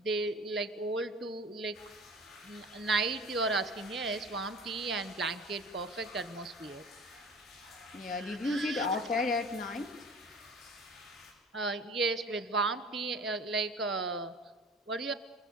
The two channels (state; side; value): normal; both; correlation 0.42